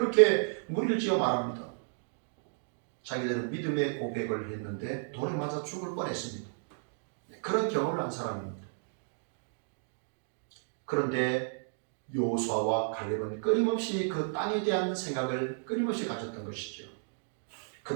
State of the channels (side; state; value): left; silent; digital silence